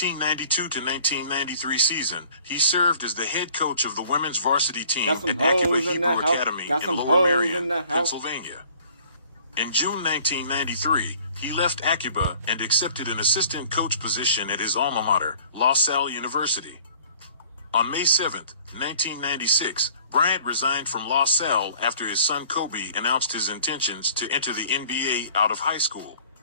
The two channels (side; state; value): both; inverted; correlation -0.53